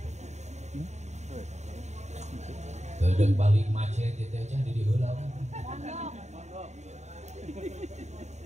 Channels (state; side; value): late; left; 0.33 ms